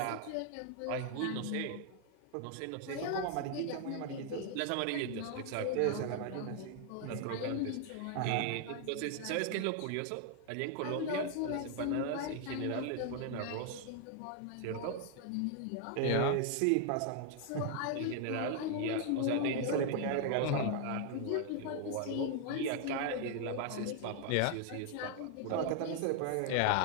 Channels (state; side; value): different; both; correlation 0.00